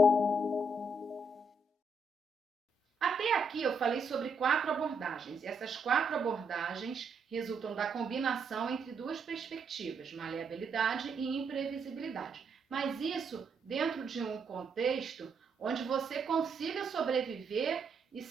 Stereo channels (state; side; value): normal; both; correlation 0.78